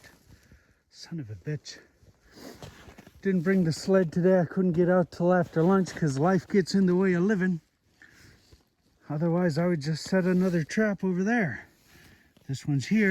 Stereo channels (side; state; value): both; identical; correlation 1.00